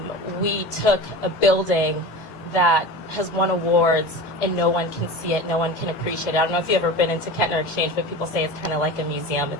We took a building that has won awards and no one can see it, no one can appreciate it. I don't know if you've ever been into Kettner Exchange, but people say it's kind of like a museum.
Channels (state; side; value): late; right; 19 ms